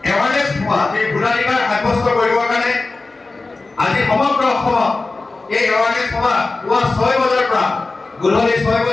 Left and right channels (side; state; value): right; quieter; 3.5 dB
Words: এৱাৰনেছ হোৱা এই ভোটাধিকাৰ সাব্যস্ত কৰিবৰ কাৰণে আজি সমগ্ৰ অসমত এই এৱাৰনেছ সভা পুৱা 6 বজাৰ পৰা গধূলি 6